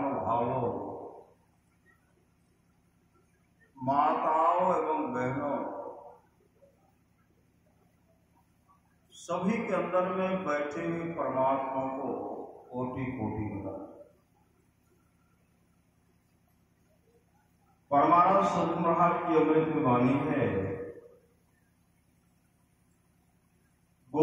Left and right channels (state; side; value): identical; both; correlation 1.00